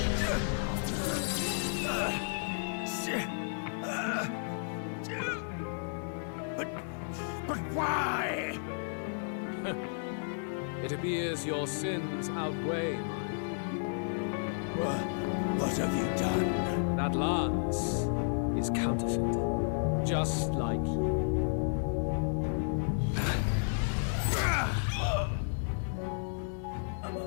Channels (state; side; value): silent; right; digital silence